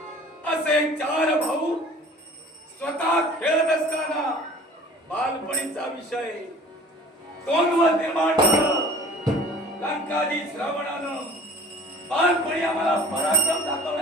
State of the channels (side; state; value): both; normal; correlation 0.47